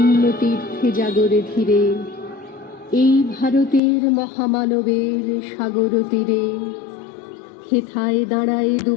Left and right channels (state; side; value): drops out; right; at 3.8 s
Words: তীর্থে জাগরে ধীরে, এই ভারতের মহামানবের সাগর তীরে। হেথায় দাঁড়ায়